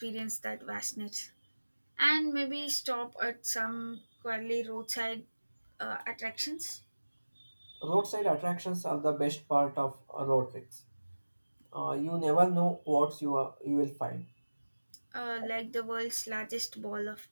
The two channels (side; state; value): both; inverted; correlation -1.00